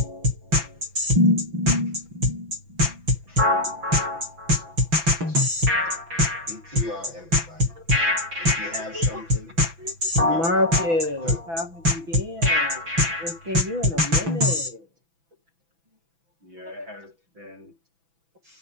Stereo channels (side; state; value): left; late; 6.0 ms